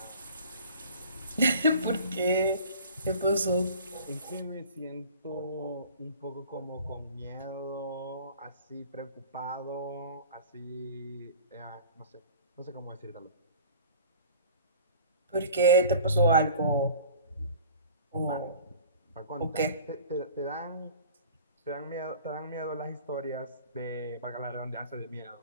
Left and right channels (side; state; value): both; inverted; correlation -0.44